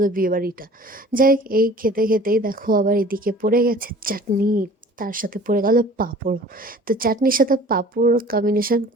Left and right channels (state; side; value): normal; both; correlation 0.47